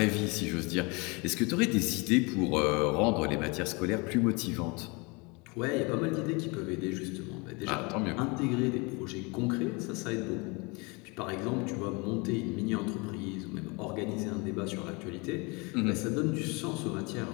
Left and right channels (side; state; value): right; quieter; 28.5 dB